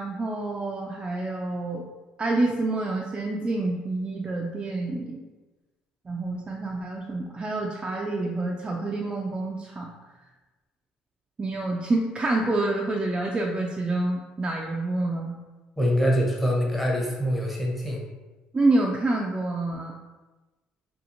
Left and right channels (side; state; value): both; normal; correlation 0.84